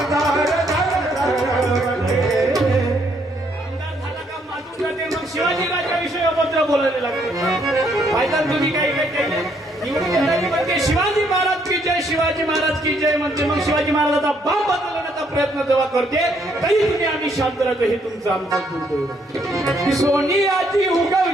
झाला तुझ्याकडे. आमदार झाला का मातून जाते मग शिवाजीराजाविषयी अभद्र बोलायला लागते फायदा तुम्ही काही काही केले निवडून येणारी म्हणते शिवाजी महाराज की जय शिवाजी महाराज की जय म्हणते मग शिवाजी महाराजाचा बाप बदलण्याचा प्रयत्न जेव्हा करते तरी तुम्ही आम्ही शांत राहतो हे तुमचं आमचं दुर्दैव सोनियाची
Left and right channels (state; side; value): normal; both; correlation 0.70